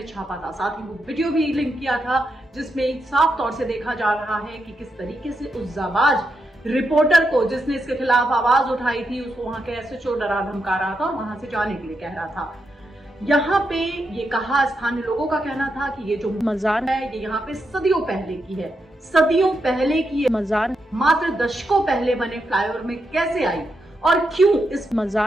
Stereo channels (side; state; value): both; normal; correlation 0.84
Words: छापा था। साथ ही वो वीडियो भी लिंक किया था जिसमें साफ तौर से देखा जा रहा है कि किस तरीके से उस जाबाज रिपोर्टर को जिसने इसके खिलाफ आवाज उठाई थी उसको वहां के एसएचओ डरा धमका रहा था और वहां से जाने के लिए कह रहा था। यहाँ पे ये कहा, स्थानीय लोगों का कहना था कि ये जो मजार है ये यहाँ पे सदियों पहले की है। सदियों पहले की ये मजार मात्र दशकों पहले बने फ्लाईओवर में कैसे आई और क्यों इस